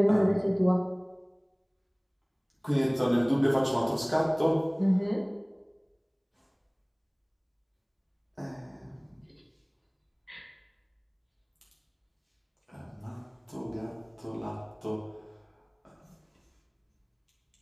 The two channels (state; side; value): identical; both; correlation 1.00